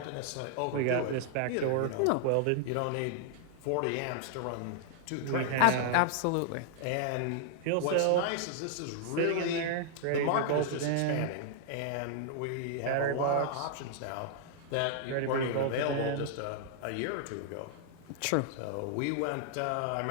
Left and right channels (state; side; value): different; both; correlation -0.01